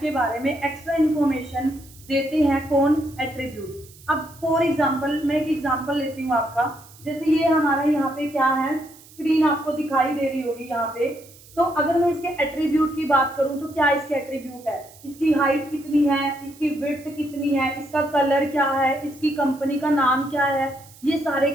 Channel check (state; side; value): noise; right; hiss, 23 dB below the sound